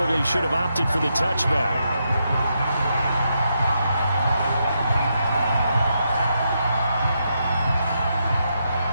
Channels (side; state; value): both; inverted; correlation -0.82